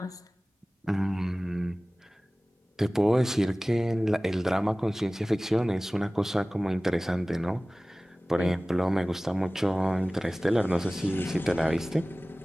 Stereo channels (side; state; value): both; normal; correlation 0.98